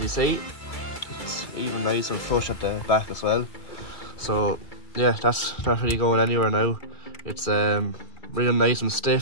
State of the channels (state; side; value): late; right; 2.4 ms